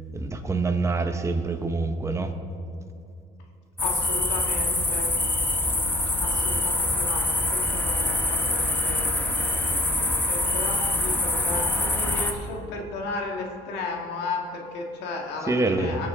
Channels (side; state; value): both; normal; correlation 0.53